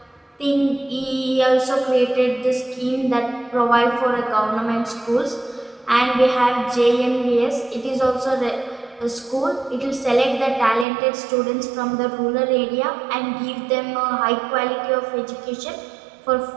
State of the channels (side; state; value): left; drops out; at 10.9 s